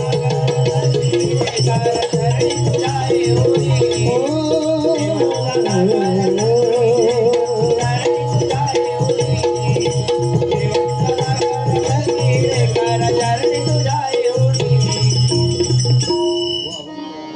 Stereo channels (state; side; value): identical; both; correlation 1.00